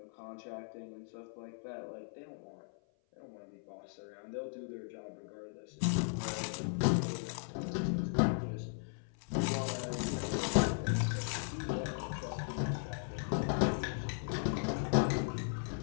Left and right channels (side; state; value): right; silent; 53 dB below the other